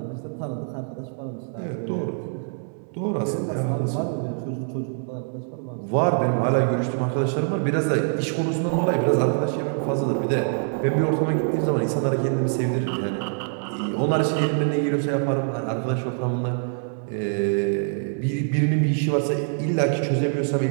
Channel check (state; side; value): silent; left; digital silence